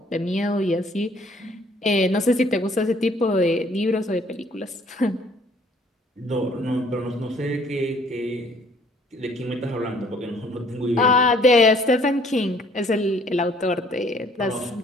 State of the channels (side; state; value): both; normal; correlation 0.59